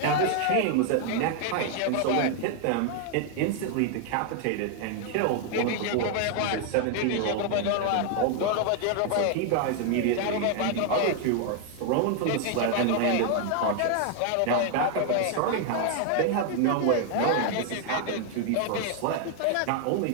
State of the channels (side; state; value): both; different; correlation 0.00